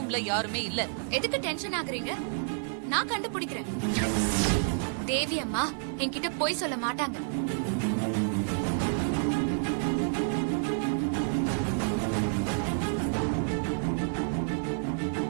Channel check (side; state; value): left; silent; digital silence